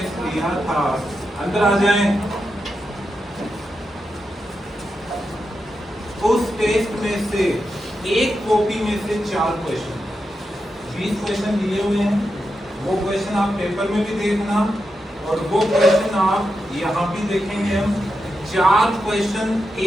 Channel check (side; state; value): both; normal; correlation 0.87